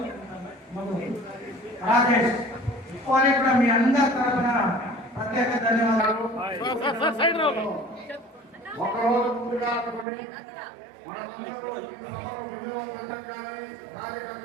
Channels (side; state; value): left; drops out; at 10.1 s